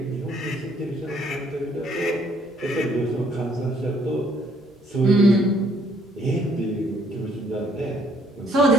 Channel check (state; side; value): normal; both; correlation 0.65